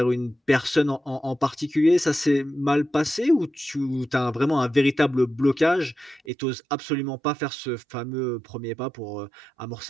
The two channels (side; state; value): left; drops out; at 6.2 s